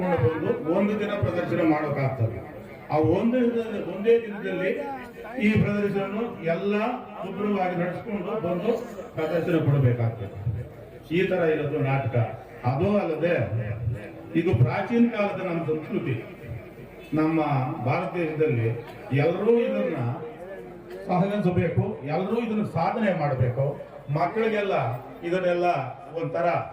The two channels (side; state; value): both; identical; correlation 1.00